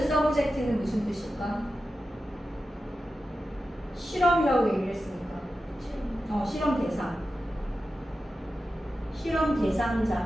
subject는 무슨 뜻일까? 실험이라고 얘기를 했으니까. 실험. 실험 대상. 실험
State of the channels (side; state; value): both; normal; correlation 0.92